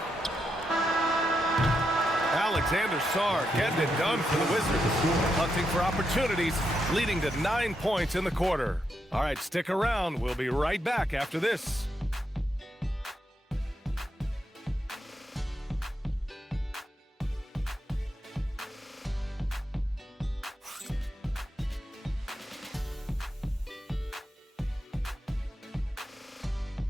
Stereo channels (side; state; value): both; normal; correlation 0.83